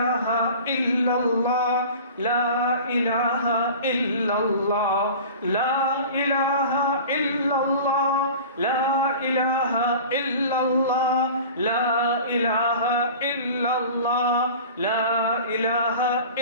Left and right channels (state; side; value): inverted; both; correlation -0.39